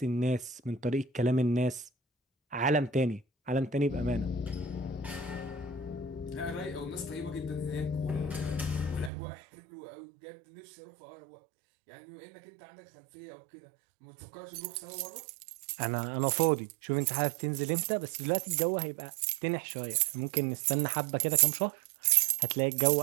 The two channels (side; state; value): left; drops out; at 9.1 s